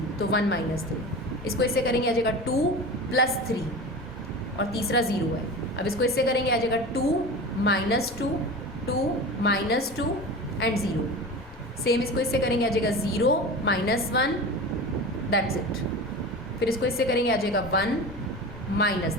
तो 1 -3। इसको इससे करेंगे आ जाएगा 2 + 3 और तीसरा 0 है। अब इसको इससे करेंगे आ जाएगा 2 -2 2 -2 एंड 0। सेम इसको इससे करेंगे आ जाएगा 0 -1, दैट्स इट। फिर इसको इससे करेंगे आ जाएगा 1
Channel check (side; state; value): both; normal; correlation 0.31